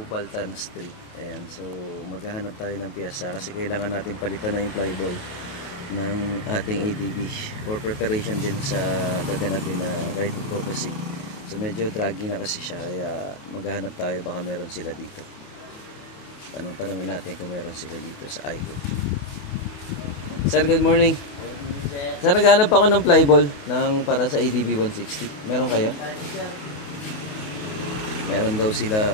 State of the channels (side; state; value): right; late; 28 ms